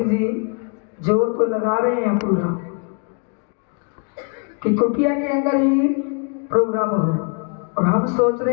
जी जोर तो लगा रहे हैं पूरा कि कुटिया के अंदर ही प्रोग्राम हो, और हम सोच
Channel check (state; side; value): quieter; right; 37.3 dB